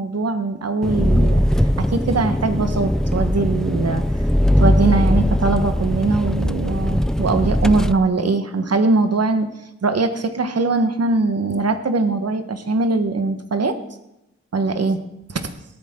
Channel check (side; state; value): both; normal; correlation 0.63